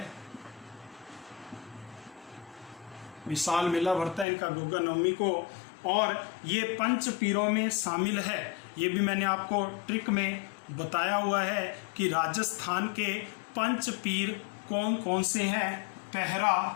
विशाल मेला भरता है इनका गोगा नवमी को, और ये 5 पीरों में शामिल है। ये भी मैंने आपको ट्रिक में बताया हुआ है कि राजस्थान के 5 पीर कौन कौन से हैं। पहरा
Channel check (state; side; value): drops out; right; at 4.2 s